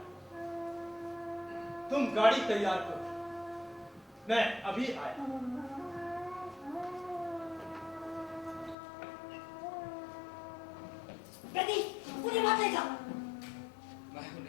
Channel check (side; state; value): right; drops out; at 8.8 s